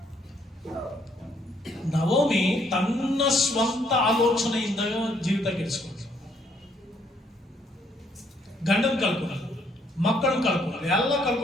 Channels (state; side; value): normal; both; correlation 0.69